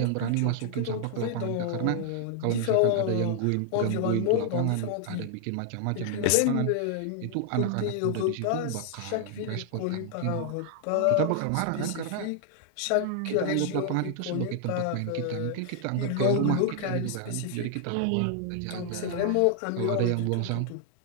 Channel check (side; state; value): both; different; correlation 0.00